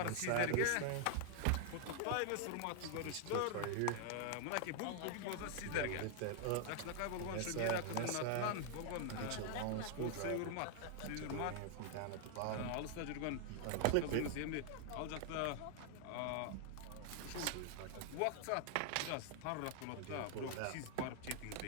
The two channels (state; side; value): different; both; correlation 0.00